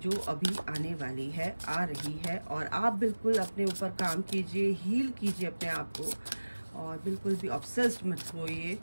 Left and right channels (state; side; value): inverted; both; correlation -1.00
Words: अभी आने वाली है, आ रही है, और आप बिल्कुल अपने ऊपर काम कीजिए, हील कीजिए अपने आप को, और बिल्कुल भी ऑब्सेस्ड मत होइए,